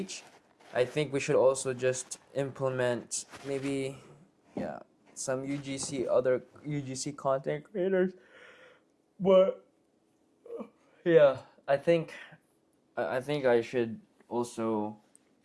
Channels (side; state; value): both; identical; correlation 1.00